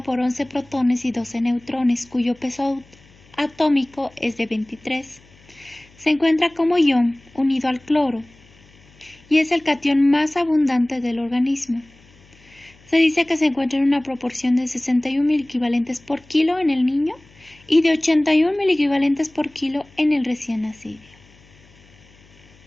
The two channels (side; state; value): left; noise; hum, 28 dB below the sound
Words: por 11 protones y 12 neutrones, cuyo peso atómico es de 23. Se encuentra como ion unido al cloro y es el catión más abundante del organismo. Se dice que se encuentra en una proporción de 61 miliequivalentes por kilo en el niño y de 81 miliequivalentes por kilo en el recién nacido.